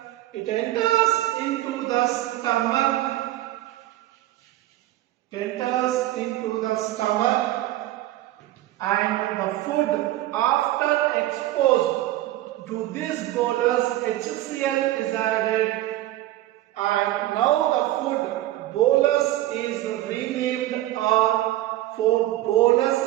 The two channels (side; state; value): left; quieter; 15.4 dB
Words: it enters into the stomach. And the food after exposed to this bolus, HCl is added, and now the food bolus is renamed, or for bolus